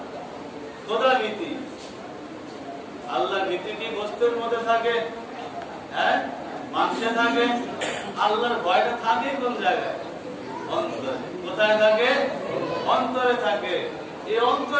খোদা ভীতি। আল্লাহর ভীতি কি গোশতের মধ্যে থাকে? হ্যাঁ, মাংসে থাকে। আল্লাহর ভয়টা থাকে কোন জায়গায়? অন্তরে। কোথায় থাকে? অন্তরে থাকে। এই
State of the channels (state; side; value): identical; both; correlation 1.00